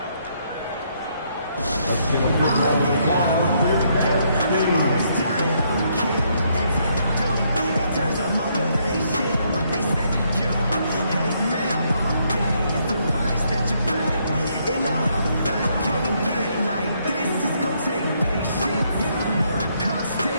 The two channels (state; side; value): inverted; both; correlation -0.73